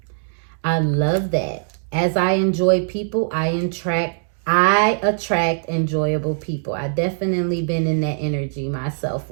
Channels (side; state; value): left; silent; digital silence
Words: I love that. As I enjoy people, I attract enjoyable people. I've definitely been in that energy myself